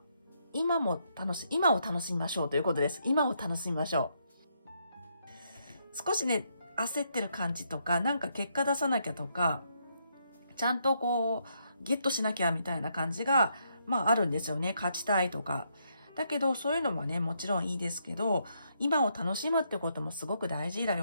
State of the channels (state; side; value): inverted; both; correlation -0.76